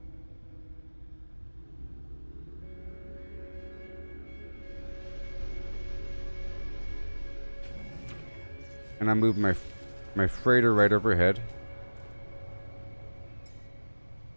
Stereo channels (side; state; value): both; inverted; correlation -1.00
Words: And I move my freighter right overhead.